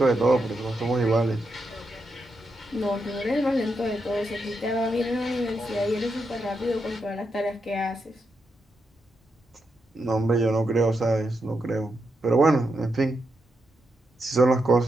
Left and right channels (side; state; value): both; normal; correlation 0.83